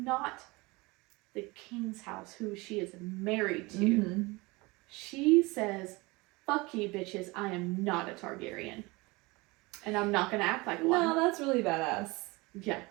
the king's house, who she is married to. Mm-hmm. She says, "Fuck you, bitches. I am not a Targaryen. And I'm not gonna act like one." No, that's really badass. Yeah.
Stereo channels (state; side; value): quieter; left; 24.1 dB